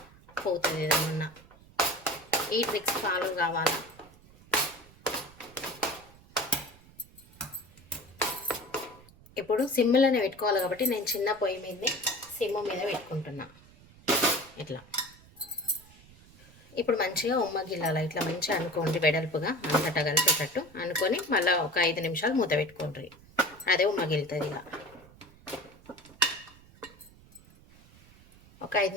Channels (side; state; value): right; noise; rumble, 24 dB below the sound